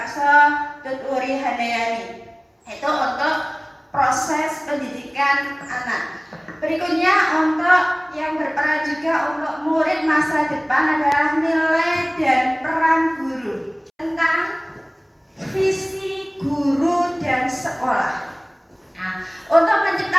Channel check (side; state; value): both; identical; correlation 1.00